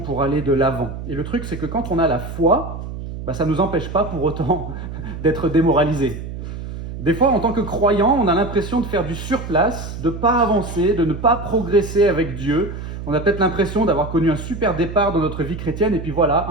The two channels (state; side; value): noise; right; hum, 8 dB below the sound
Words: aller de l'avant. Et le truc c'est que quand on a la foi, ça ne nous empêche pas pour autant d'être démoralisés. Des fois, en tant que croyant, on a l'impression de faire du surplace, de ne pas avancer, de ne pas progresser avec Dieu. On a peut-être l'impression d'avoir connu un super départ dans notre vie chrétienne, et puis voilà,